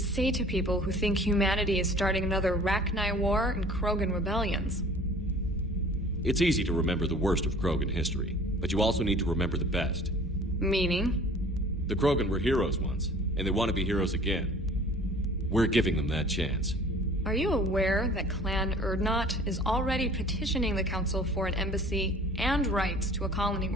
to people who think humanity is starting another Rachni War and Krogan rebellions? It's easy to remember the worst of Krogan history, but you also need to remember the best. Meaning? The Krogan were heroes once, and they want to be heroes again. We're giving them that chance. Are you aware that Clan Urdnot is already petitioning the Council for an embassy and rights to a colony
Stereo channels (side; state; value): both; normal; correlation 0.48